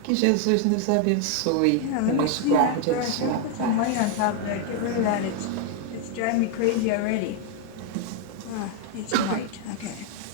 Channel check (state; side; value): different; both; correlation 0.01